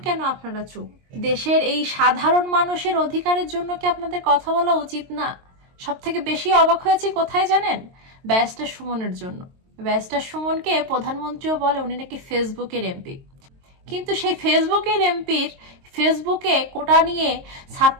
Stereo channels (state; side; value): late; left; 22 ms